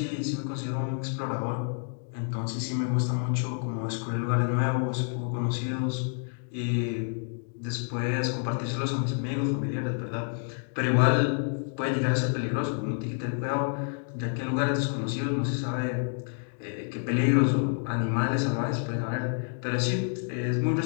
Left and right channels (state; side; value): silent; right; 59 dB below the other